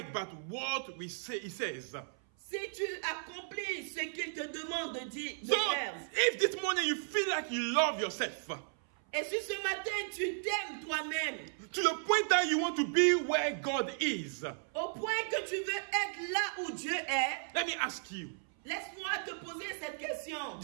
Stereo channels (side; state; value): left; silent; 54 dB below the other